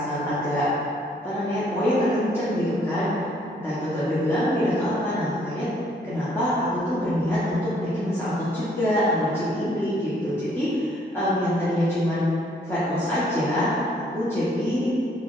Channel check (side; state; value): both; normal; correlation 0.64